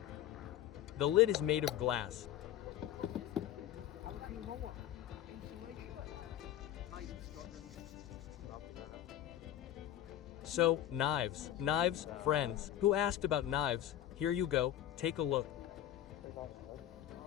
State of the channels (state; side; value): quieter; right; 12.0 dB